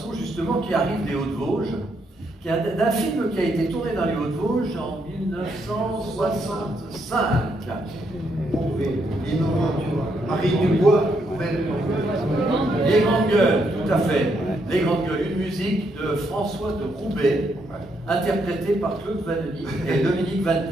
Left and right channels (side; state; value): both; normal; correlation 0.76